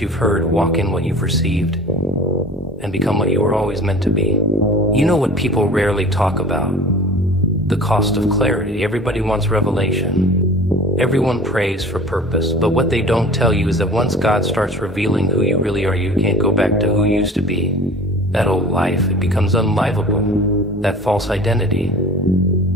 you've heard, walk in what you've received, and become what you were always meant to be. You know what people rarely talk about? The cost of clarity. Everybody wants revelation. Everyone prays for purpose, but what they don't tell you is that once God starts revealing who you really are, you can't go back to who you used to be. That old life, it becomes unlivable. That false identity.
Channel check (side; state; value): both; normal; correlation 0.41